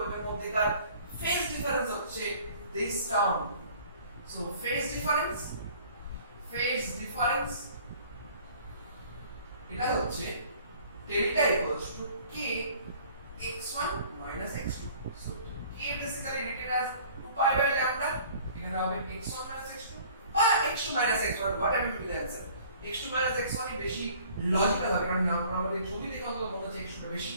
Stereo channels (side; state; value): both; inverted; correlation -0.52